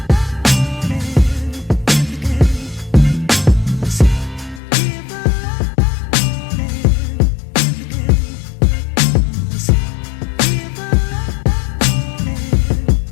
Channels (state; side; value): drops out; right; at 4.6 s